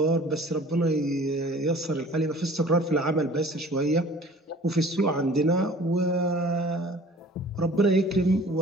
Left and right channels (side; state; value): both; normal; correlation 0.48